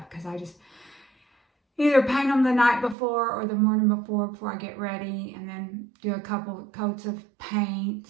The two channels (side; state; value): left; drops out; at 3.0 s